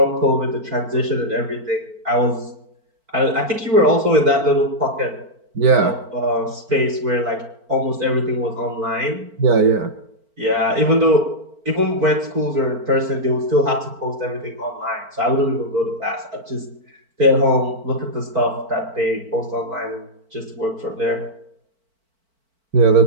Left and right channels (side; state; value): left; late; 4.5 ms